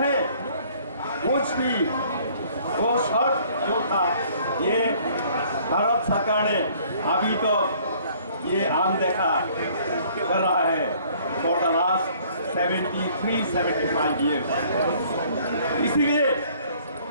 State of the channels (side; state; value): both; inverted; correlation -0.58